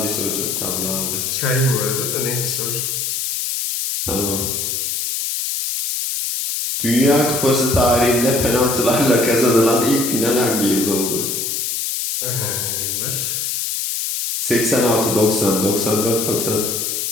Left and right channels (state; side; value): noise; left; hiss, 2 dB below the sound